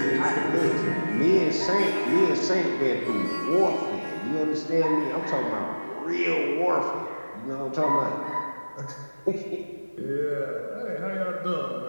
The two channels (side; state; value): both; inverted; correlation -1.00